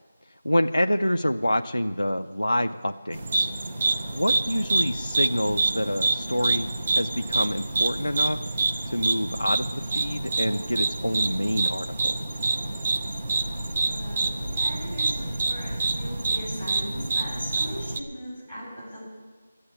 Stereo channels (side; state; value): both; inverted; correlation -0.93